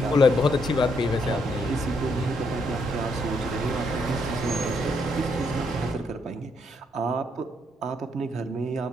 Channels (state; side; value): normal; both; correlation 0.74